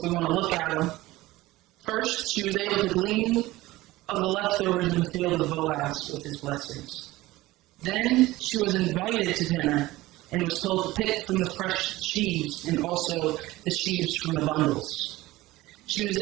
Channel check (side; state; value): left; quieter; 18.3 dB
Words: we want to look at them. First, she was able to glean of the leftovers in the field of Boaz with his blessings. Then she was invited to dinner and was told to pick from the fresh sheaves and also the sheaves from the bundles. She was